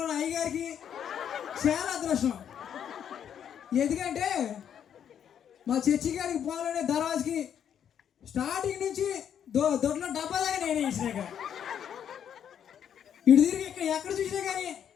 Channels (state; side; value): quieter; right; 8.9 dB